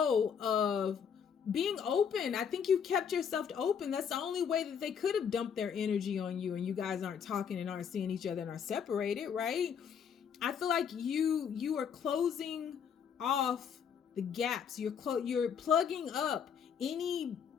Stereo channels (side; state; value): right; quieter; 7.4 dB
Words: of being open. I think you kept yourself open. That's the only way that they could have dumped their energy on you, and you guys aren't talking and aren't seeing each other and are separated, right? I feel like you are closing off the gaps. You're plugging up any